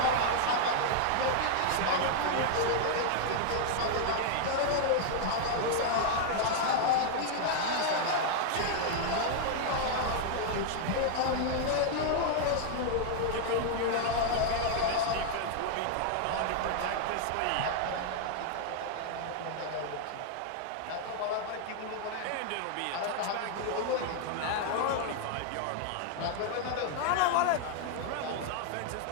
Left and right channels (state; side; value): different; both; correlation 0.00